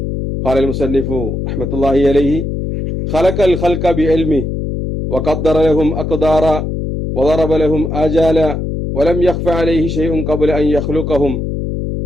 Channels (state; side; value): noise; left; hum, 3 dB below the sound